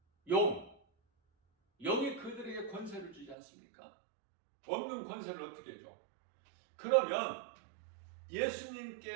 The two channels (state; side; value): drops out; left; at 3.4 s